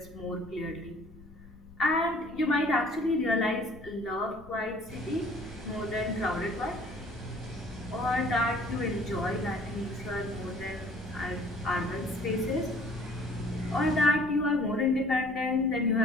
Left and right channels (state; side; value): noise; left; rumble, 20 dB below the sound